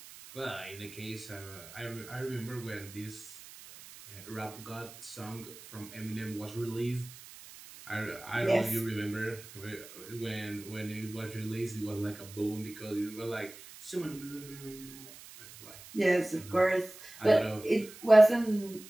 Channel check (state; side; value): noise; right; hiss, 17 dB below the sound